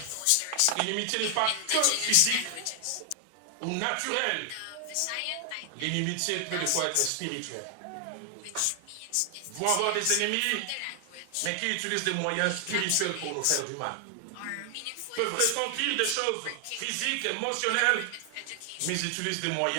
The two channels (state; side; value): different; both; correlation 0.00